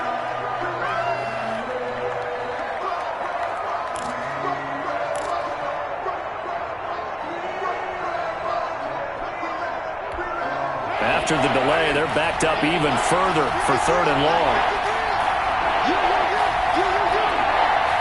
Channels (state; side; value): identical; both; correlation 1.00